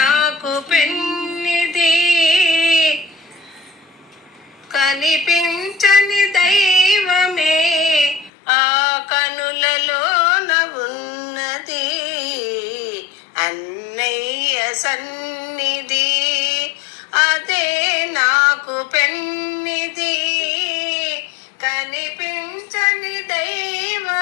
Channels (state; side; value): drops out; right; at 8.3 s